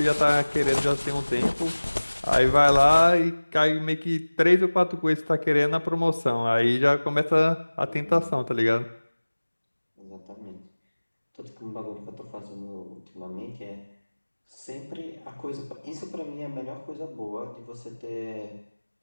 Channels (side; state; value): both; inverted; correlation -1.00